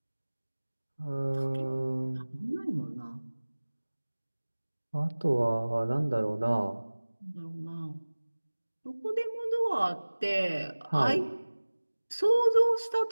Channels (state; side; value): inverted; both; correlation -1.00